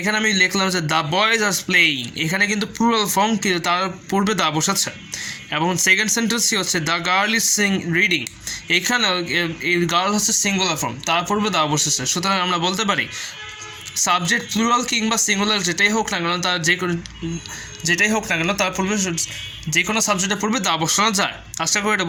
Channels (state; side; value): identical; both; correlation 1.00